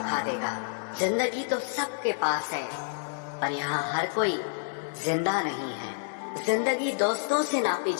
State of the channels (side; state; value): right; silent; digital silence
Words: देगा। जिंदगी तो सबके पास है, पर यहाँ हर कोई जिंदा नहीं है। जिंदगी दोस्तों से नापी